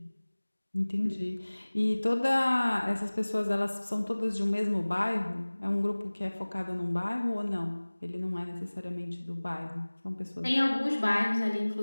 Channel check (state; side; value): inverted; both; correlation -1.00